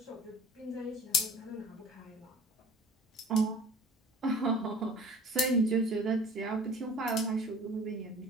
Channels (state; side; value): normal; both; correlation 0.45